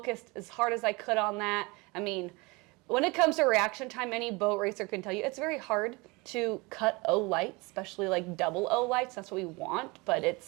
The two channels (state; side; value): quieter; left; 25.6 dB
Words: as hard as I could on that. I mean, when it comes to reaction time, any boat racer can tell you it's very hard to cut O lights, especially like double O lights. That's what we want, but